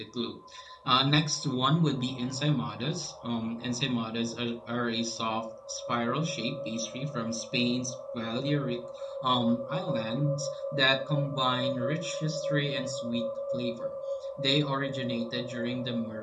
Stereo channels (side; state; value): both; identical; correlation 1.00